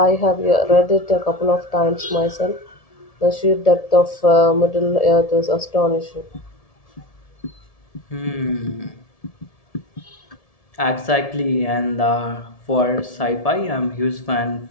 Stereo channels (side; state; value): right; late; 1.7 ms